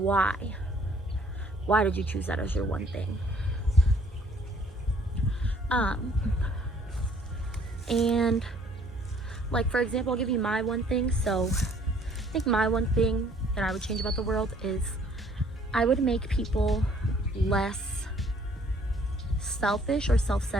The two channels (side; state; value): both; normal; correlation 0.60